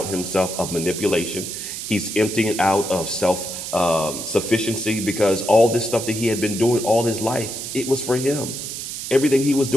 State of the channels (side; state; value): right; noise; hiss, 7 dB below the sound